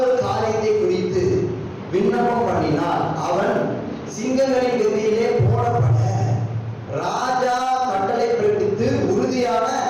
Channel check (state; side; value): identical; both; correlation 1.00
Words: காரியத்தை குறித்து விண்ணப்பம் பண்ணினால் அவன் சிங்கங்களின் கதியிலே போடப்பட ராஜா கட்டளை பிறப்பித்து உறுதியான